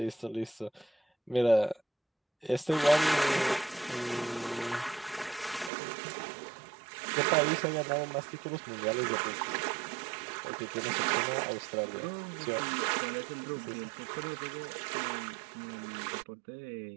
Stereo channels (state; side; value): drops out; left; at 5.7 s